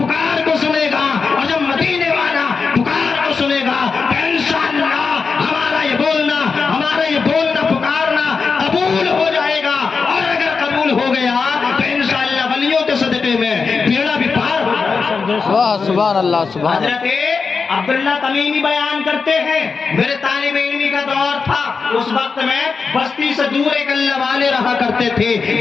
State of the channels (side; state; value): right; quieter; 5.0 dB